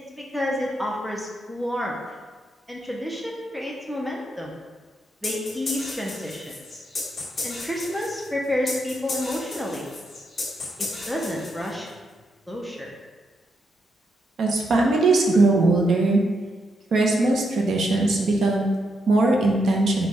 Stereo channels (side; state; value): both; normal; correlation 0.81